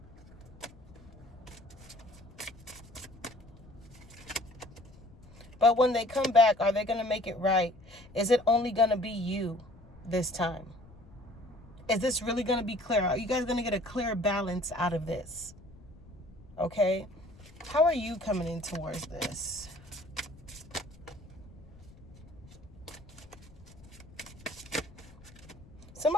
But when they come back, are they going to make it right? Is it only going to be you this time? Is this really going to be clear? Are you guys going to get a clear balance out of this? Okay? How are you coming in towards this?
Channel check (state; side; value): noise; left; rumble, 22 dB below the sound